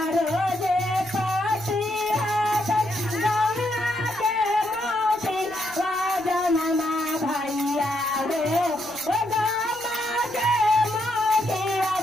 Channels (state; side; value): noise; right; rumble, 25 dB below the sound